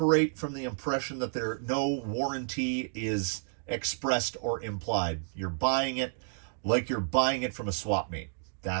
from the impression that no warranty is expressed or implied. You're buying it like you're buying it from a swap meet.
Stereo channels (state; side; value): silent; left; digital silence